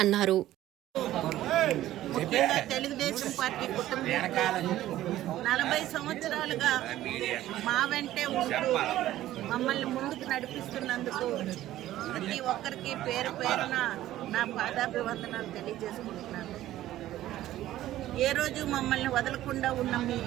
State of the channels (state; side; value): quieter; left; 14.1 dB